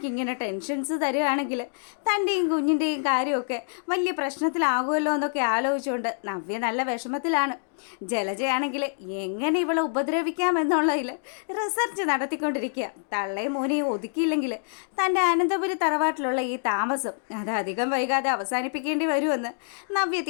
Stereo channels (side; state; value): right; silent; digital silence